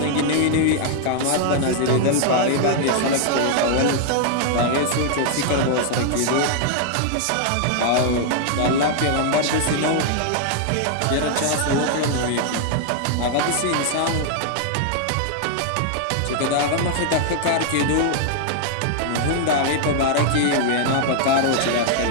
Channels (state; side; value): different; both; correlation 0.00